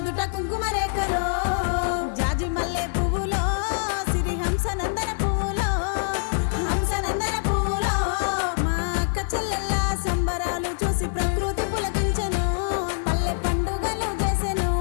కుంకుమ రేఖలో జాజి మల్లె పువ్వులో సిరి హంసనందన పువ్వులో హంసనందన పువ్వులో మా అక్క చెల్లెల్ల సంబరాలు చూసి ప్రకృతి పులకించెను పల్లె పండుగలు చేసెను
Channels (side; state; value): right; silent; digital silence